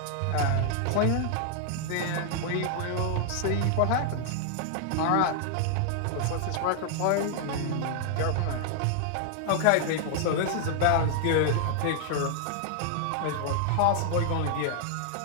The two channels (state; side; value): different; both; correlation 0.00